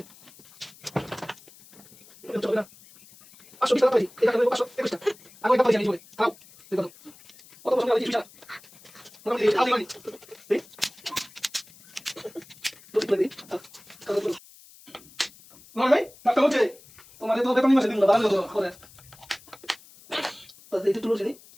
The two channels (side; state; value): left; noise; hiss, 23 dB below the sound